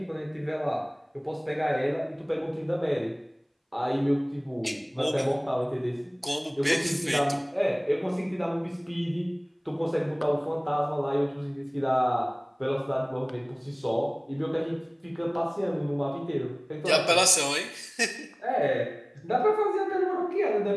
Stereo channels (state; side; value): identical; both; correlation 1.00